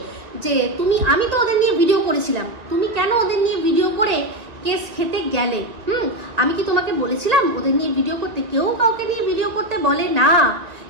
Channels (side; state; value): left; late; 1.9 ms